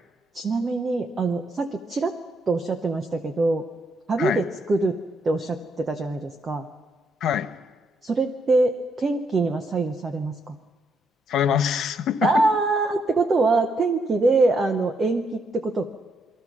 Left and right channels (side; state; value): both; normal; correlation 0.76